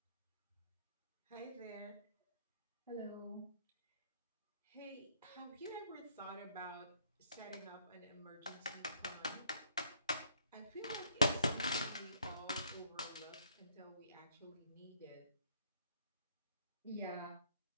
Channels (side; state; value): both; inverted; correlation -0.65